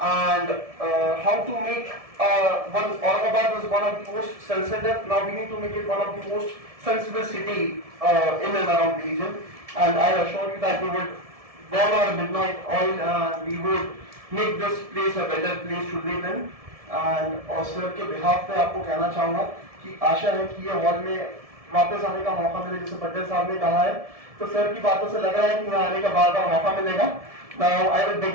And how to make Aurangabad is one of the most sensitive. Now we need to make it one of the most sensible city in and around the region. And I assure you that we would burn our midnight oil and we would make this place a better place to live in. And और sir के behalf पे आपको कहना चाहूँगा कि आशा है कि ये हॉल में वापस आने का मौका मिले, जैसे पटेल साहब ने कहा है, तो सर की बातों से लग रहा है कि यहाँ आने का बार-बार मौका मिलेगा. Now I will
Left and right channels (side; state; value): left; late; 1.7 ms